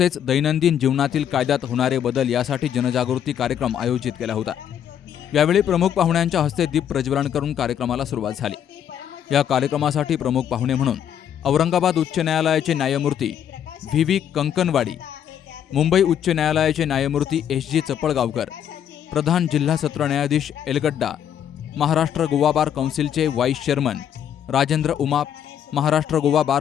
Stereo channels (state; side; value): quieter; right; 9.4 dB